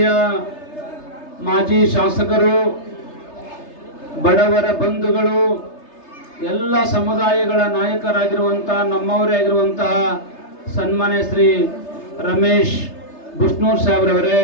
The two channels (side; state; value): right; late; 3.3 ms